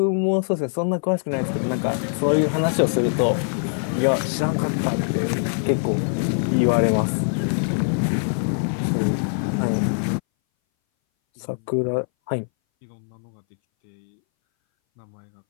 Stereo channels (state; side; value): silent; right; 61 dB below the other